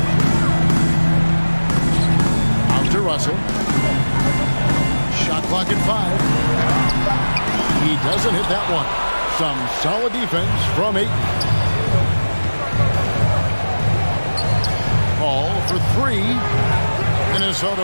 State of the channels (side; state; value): both; inverted; correlation -1.00